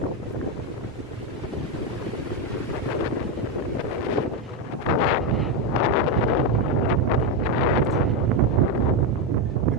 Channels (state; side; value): normal; both; correlation 0.07